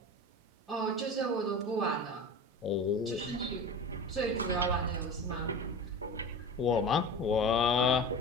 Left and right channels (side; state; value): both; normal; correlation 0.31